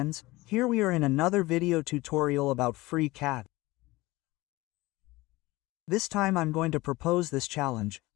here we are in another video tutorial about FreeCAD. This time I'm going to propose this challenge,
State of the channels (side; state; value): right; quieter; 20.4 dB